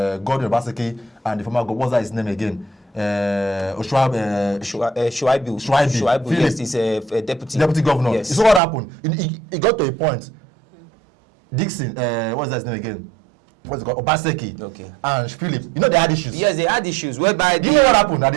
Gordon Obaseki and the former governor. What's that his name again? Shuaibu, yes, he's a deputy governor. Yes. You saw what happened. It got to a point. Dixon, what's that his name again? What's it called? Obaseki. Okay. And Philip. They had issues. Yes, they had issues whereby Do you know what happened? That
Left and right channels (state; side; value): drops out; left; at 8.6 s